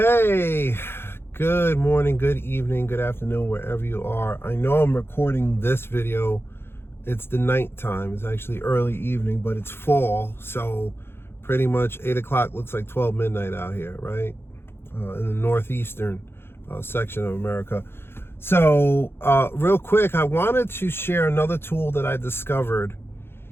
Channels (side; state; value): right; late; 0.11 ms